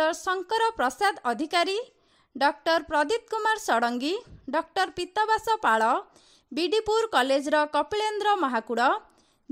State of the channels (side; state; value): both; identical; correlation 1.00